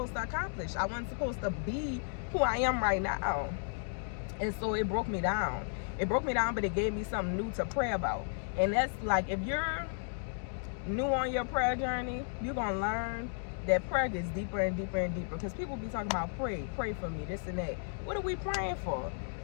to accomplish. I wasn't supposed to be who I am right now. And so it broke me down. It broke me down, but it gave me something new to pray about. And that's like, if you're new on your prayer journey, you're going to learn that prayer gets deeper and deeper and deeper, because people be talking about pray for me, this and that. What are we praying for?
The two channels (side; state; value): right; silent; digital silence